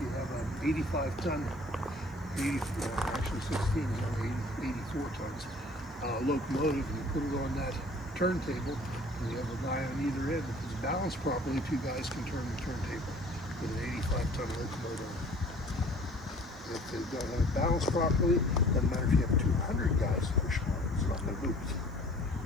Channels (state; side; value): noise; right; hiss, 30 dB below the sound